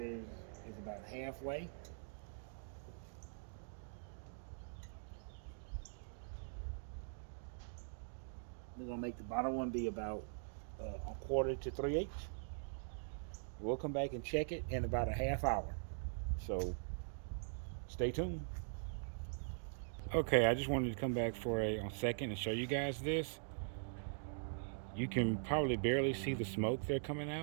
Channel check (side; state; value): left; silent; digital silence